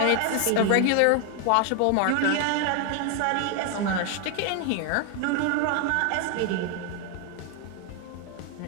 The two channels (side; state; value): both; different; correlation 0.01